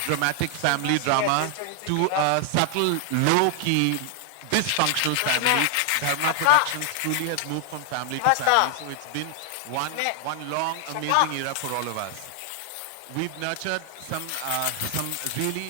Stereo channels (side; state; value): both; different; correlation 0.00